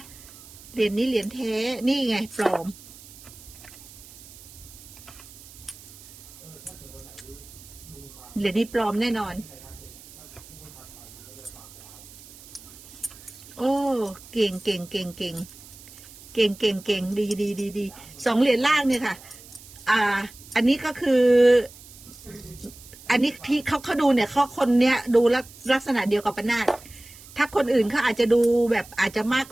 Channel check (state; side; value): noise; right; hiss, 19 dB below the sound